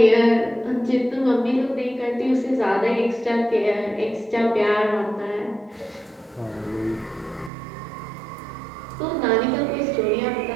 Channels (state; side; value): drops out; left; at 7.5 s